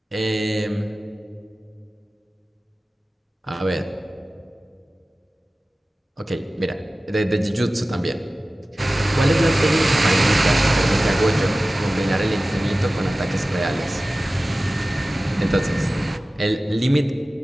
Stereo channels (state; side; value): normal; both; correlation 0.96